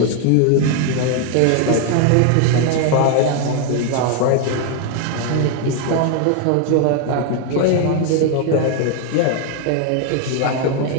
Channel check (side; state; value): both; different; correlation 0.00